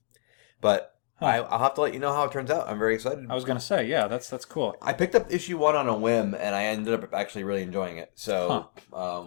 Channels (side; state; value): right; silent; 60 dB below the other